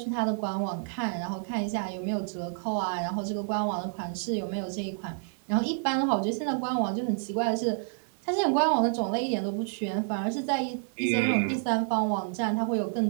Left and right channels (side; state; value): left; silent; digital silence